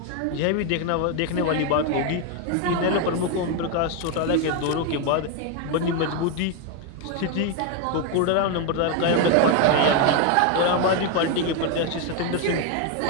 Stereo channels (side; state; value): both; different; correlation 0.01